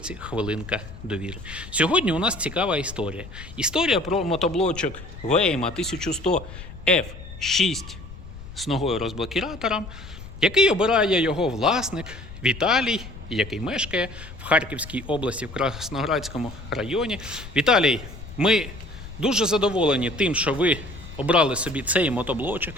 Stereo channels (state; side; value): noise; left; rumble, 14 dB below the sound